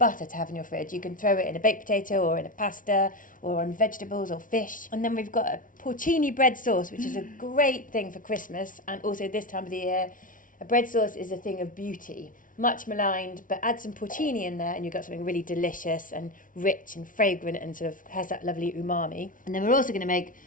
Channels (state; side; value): late; right; 0.38 ms